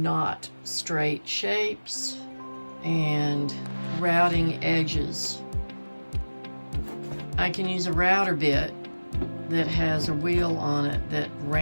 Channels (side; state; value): both; inverted; correlation -1.00